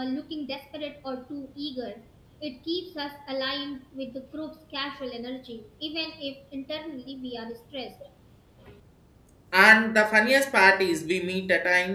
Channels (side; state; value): both; identical; correlation 1.00